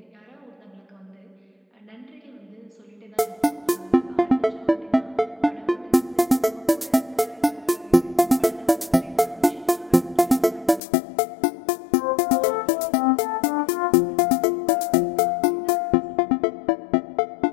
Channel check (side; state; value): right; drops out; at 10.8 s